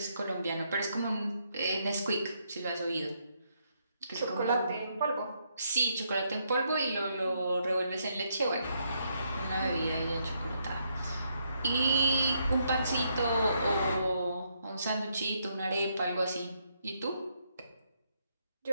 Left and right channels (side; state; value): both; inverted; correlation -0.76